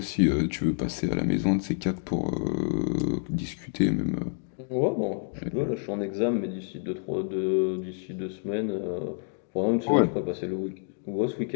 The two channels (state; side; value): silent; right; 59 dB below the other